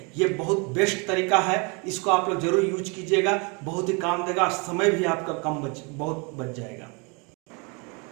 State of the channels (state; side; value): quieter; left; 31.7 dB